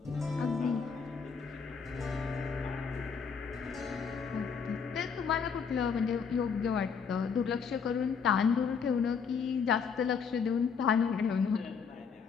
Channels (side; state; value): right; quieter; 6.1 dB